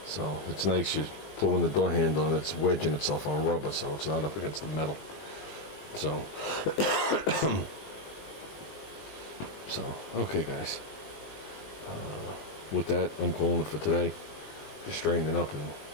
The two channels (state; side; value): late; right; 20 ms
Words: So, it's nice. You're pulling the door handle and it's wedging itself on rubber, so it's not up against the metal. So, okay, guys. With that, I'm calling it for today. Just straightening up and